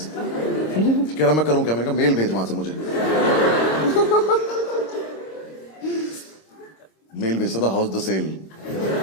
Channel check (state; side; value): late; right; 26 ms